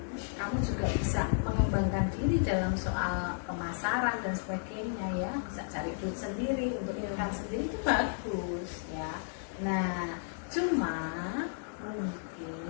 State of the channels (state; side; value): silent; right; 56 dB below the other